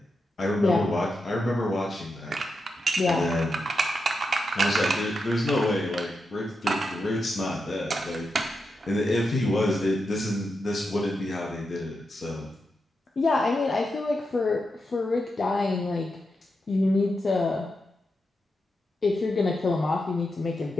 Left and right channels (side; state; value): both; normal; correlation 0.87